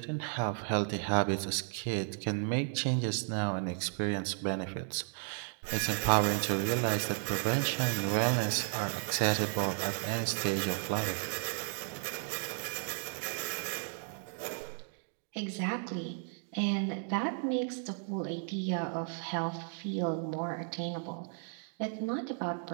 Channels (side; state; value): left; silent; 55 dB below the other